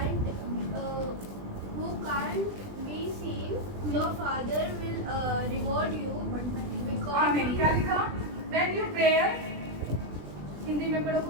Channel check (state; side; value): late; left; 20 ms